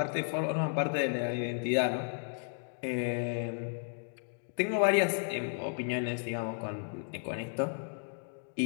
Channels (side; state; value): right; silent; digital silence